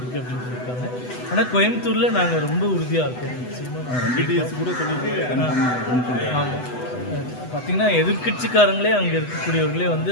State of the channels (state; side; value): late; right; 8.0 ms